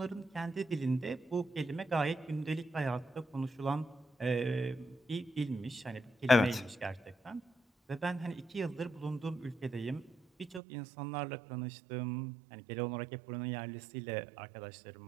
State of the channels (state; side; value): drops out; left; at 10.6 s